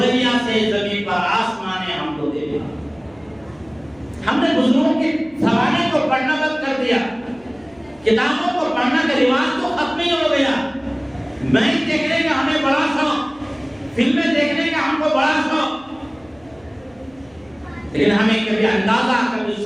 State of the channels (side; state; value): left; noise; hum, 29 dB below the sound